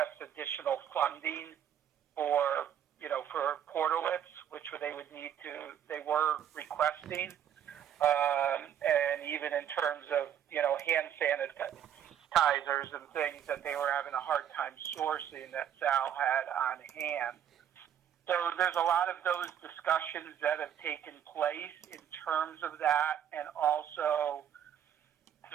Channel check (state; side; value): quieter; left; 9.6 dB